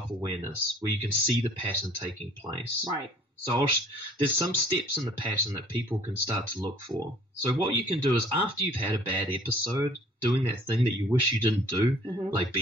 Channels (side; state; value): both; normal; correlation 0.53